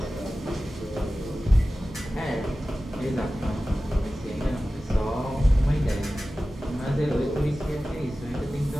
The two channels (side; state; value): both; normal; correlation 0.95